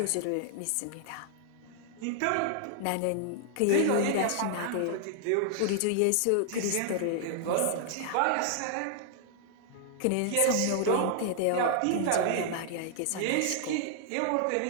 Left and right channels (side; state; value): both; different; correlation 0.00